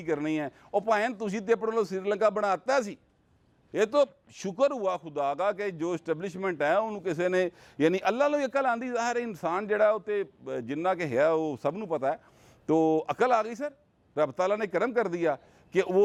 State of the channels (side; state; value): both; identical; correlation 1.00